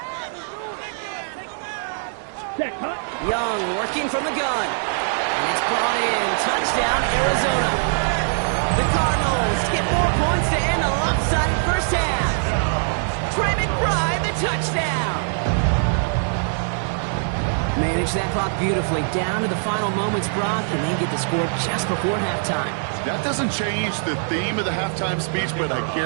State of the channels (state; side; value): silent; left; digital silence